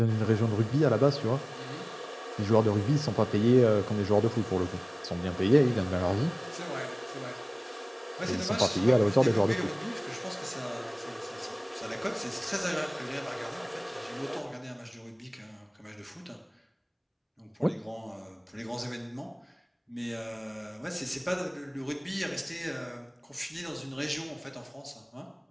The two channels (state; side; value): identical; both; correlation 1.00